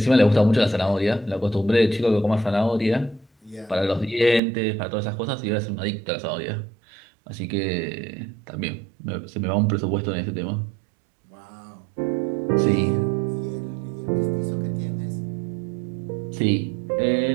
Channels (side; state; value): left; drops out; at 4.4 s